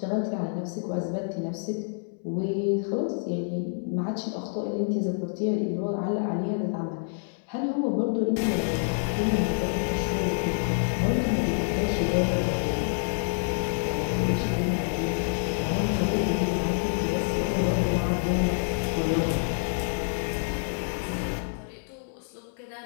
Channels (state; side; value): silent; right; 60 dB below the other